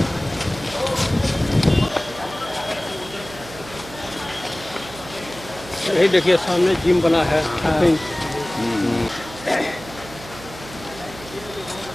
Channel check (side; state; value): right; noise; hum, 16 dB below the sound